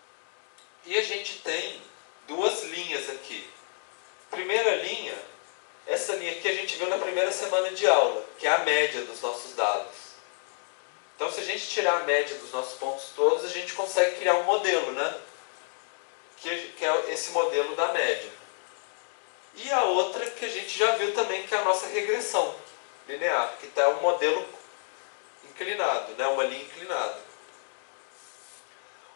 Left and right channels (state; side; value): silent; right; 57 dB below the other